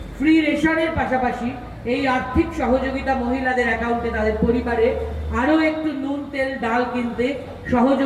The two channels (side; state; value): both; identical; correlation 1.00